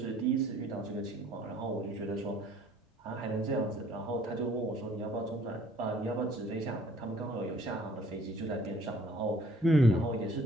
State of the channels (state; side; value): normal; both; correlation 0.58